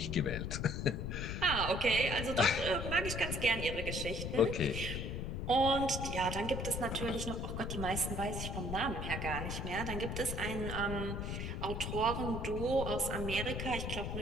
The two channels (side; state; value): left; noise; rumble, 3 dB below the sound